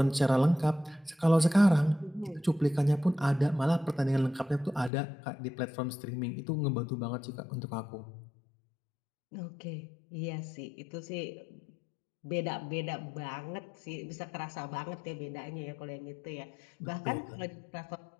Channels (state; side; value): drops out; right; at 4.9 s